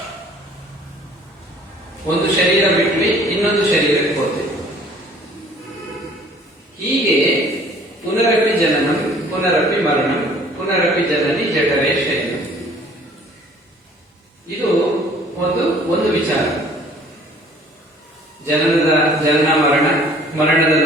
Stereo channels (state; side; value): normal; both; correlation 0.53